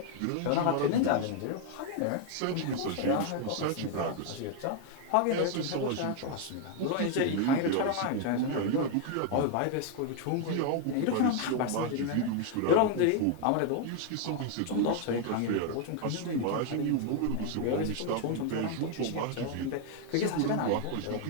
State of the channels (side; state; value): both; different; correlation 0.01